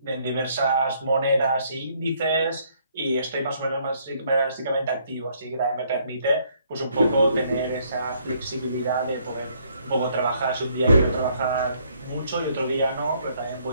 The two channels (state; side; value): inverted; both; correlation -0.67